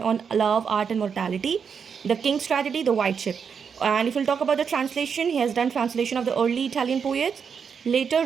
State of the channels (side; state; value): left; quieter; 6.6 dB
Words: on love, art and mortality. The King's Tragedy, The White Ship. And if we'll talk about the translation, he has done translation of the early Italian poets. Later